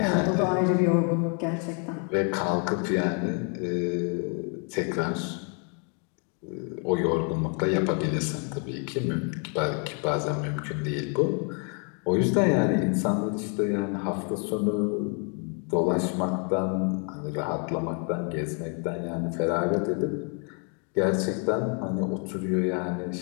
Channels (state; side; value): quieter; right; 39.1 dB